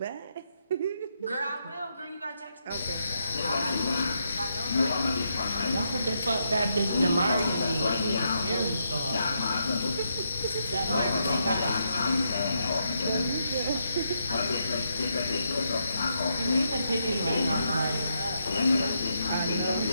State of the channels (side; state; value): both; inverted; correlation -0.80